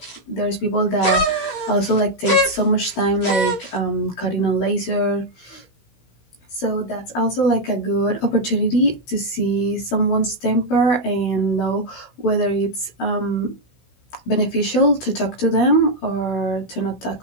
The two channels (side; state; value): right; late; 16 ms